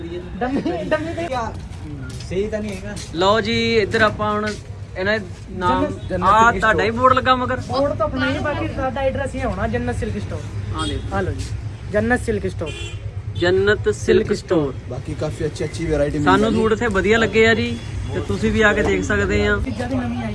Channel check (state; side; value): identical; both; correlation 1.00